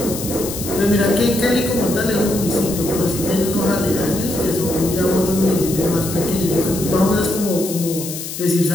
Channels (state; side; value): noise; left; hiss, 8 dB below the sound